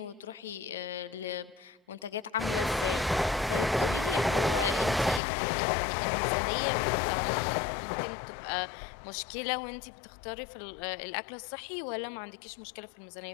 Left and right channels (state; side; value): drops out; right; at 5.2 s